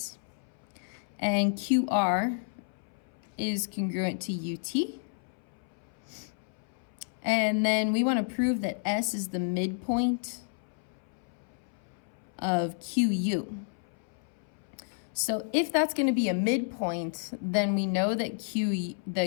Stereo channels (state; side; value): silent; right; 57 dB below the other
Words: And QR is congruent to UT. And then we want to prove that S is the midpoint of QU. So if that's going to be a midpoint, then we know that